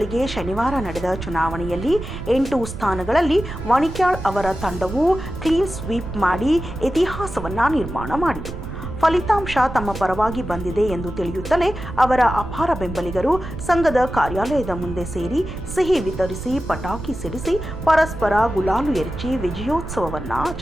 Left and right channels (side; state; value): right; noise; rumble, 9 dB below the sound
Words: ಶನಿವಾರ ನಡೆದ ಚುನಾವಣೆಯಲ್ಲಿ 8 ಸ್ಥಾನಗಳಲ್ಲಿ ವಣಿಕ್ಯಾಳ್ ಅವರ ತಂಡವು ಕ್ಲೀನ್ ಸ್ವೀಪ್ ಮಾಡಿ ಇತಿಹಾಸವನ್ನ ನಿರ್ಮಾಣ ಮಾಡಿತು. ಫಲಿತಾಂಶ ತಮ್ಮ ಪರವಾಗಿ ಬಂದಿದೆ ಎಂದು ತಿಳಿಯುತ್ತಲೇ ಅವರ ಅಪಾರ ಬೆಂಬಲಿಗರು ಸಂಘದ ಕಾರ್ಯಾಲಯದ ಮುಂದೆ ಸೇರಿ ಸಿಹಿ ವಿತರಿಸಿ ಪಟಾಕಿ ಸಿಡಿಸಿ ಪರಸ್ಪರ ಗುಲಾಲು ಎರಚಿ ವಿಜಯೋತ್ಸವವನ್ನು